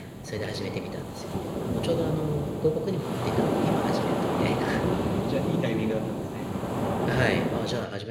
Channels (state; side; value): identical; both; correlation 1.00